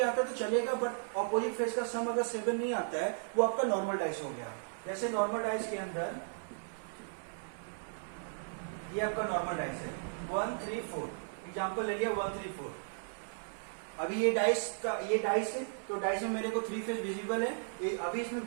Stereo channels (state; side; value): silent; left; 54 dB below the other